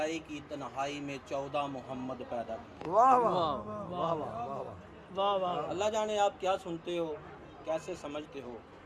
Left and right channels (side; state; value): both; identical; correlation 1.00